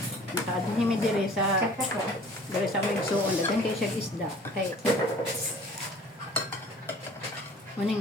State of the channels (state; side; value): normal; both; correlation 0.49